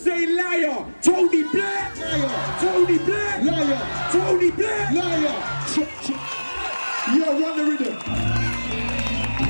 liar. Tony Blair, liar. Tony Blair, liar. Tony Blair, liar. Yeah, run the rhythm.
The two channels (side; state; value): both; inverted; correlation -1.00